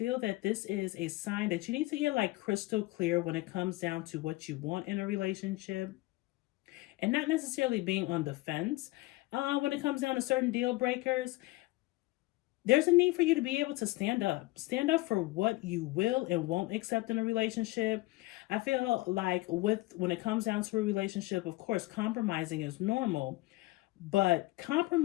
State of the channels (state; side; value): quieter; right; 20.5 dB